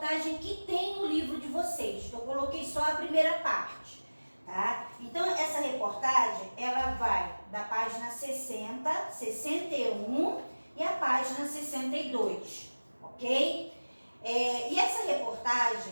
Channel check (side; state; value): both; inverted; correlation -1.00